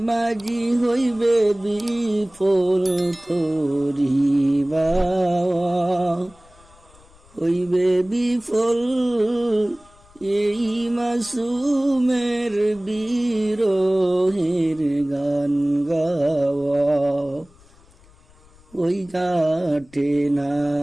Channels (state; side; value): noise; left; rumble, 27 dB below the sound